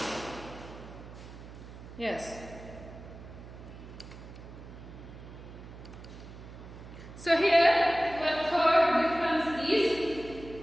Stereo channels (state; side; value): noise; right; hum, 15 dB below the sound